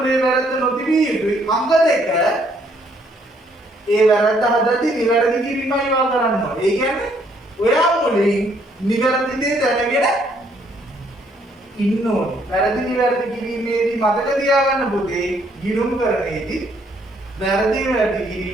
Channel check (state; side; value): normal; both; correlation 0.68